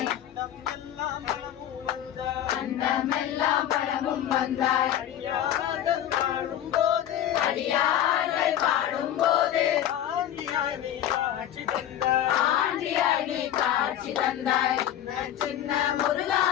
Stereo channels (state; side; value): quieter; right; 11.3 dB